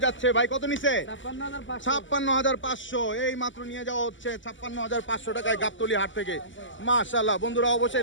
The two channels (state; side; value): late; right; 0.55 ms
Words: যাচ্ছে। ভাই কত নিছে? ৫৬,৫০০। এই মাত্র নিয়ে যাওয়া হচ্ছে ৫৬,৫০০ টাকায় গাবতলী হাট থেকে মাশাআল্লাহ বন্ধুরা।